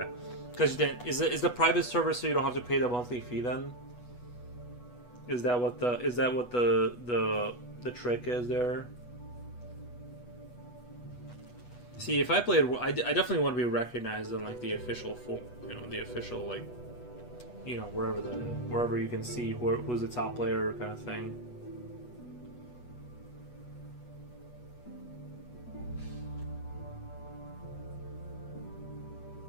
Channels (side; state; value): right; late; 8.2 ms